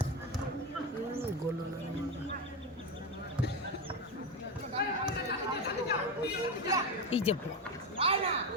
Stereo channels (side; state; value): both; normal; correlation 0.15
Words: গোল না এই যে